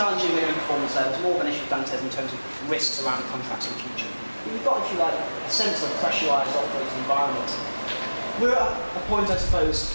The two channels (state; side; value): inverted; both; correlation -1.00